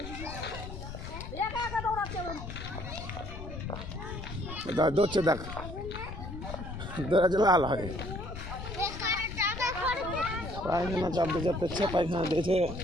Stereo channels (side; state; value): left; noise; rumble, 9 dB below the sound